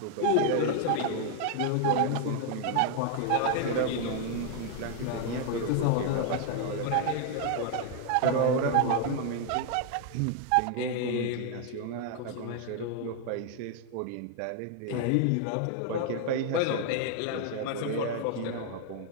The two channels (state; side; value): different; both; correlation 0.00